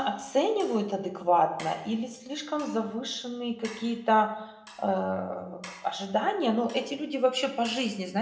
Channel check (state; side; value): identical; both; correlation 1.00